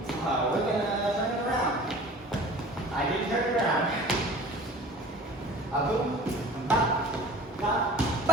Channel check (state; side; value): normal; both; correlation 0.43